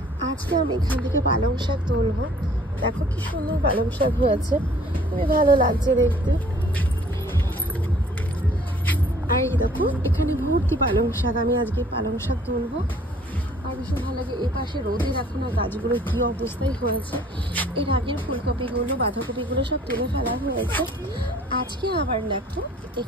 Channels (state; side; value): normal; both; correlation 0.56